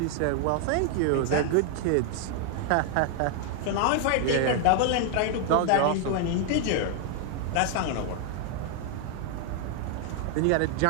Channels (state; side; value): different; both; correlation 0.00